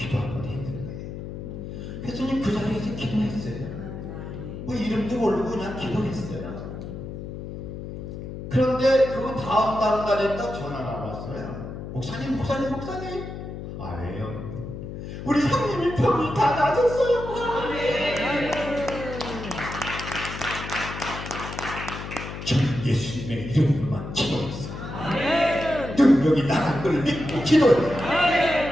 한번 해야 되는 거예요. 그래서 그 자리에서 기도했어요. 뭐 이름도 모르고 그냥 기도했어요. 그런데 그 다음 날인가 전화가 왔어요. 목사님. 아, 왜요? 우리 형님이 병이 다 나았어요. 저는 예수님의 이름으로만 기도했어요. 능력이 나간 걸 믿고 기도해요.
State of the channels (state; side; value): noise; left; hum, 9 dB below the sound